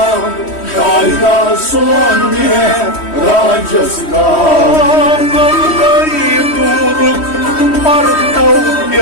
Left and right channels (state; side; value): late; right; 3.1 ms